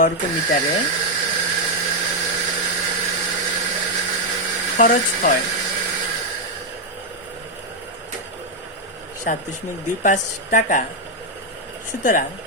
মিটারে খরচ হয় 7.25 টাকা। সুতরাং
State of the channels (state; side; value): normal; both; correlation 0.01